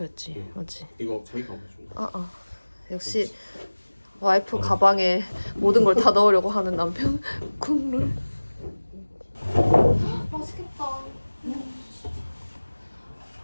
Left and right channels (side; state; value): both; inverted; correlation -1.00